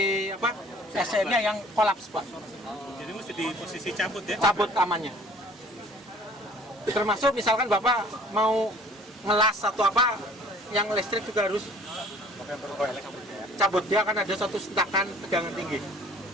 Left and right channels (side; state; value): both; normal; correlation 0.52